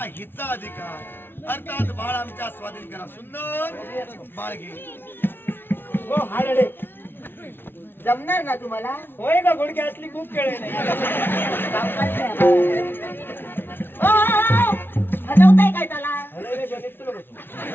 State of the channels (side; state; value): right; late; 0.10 ms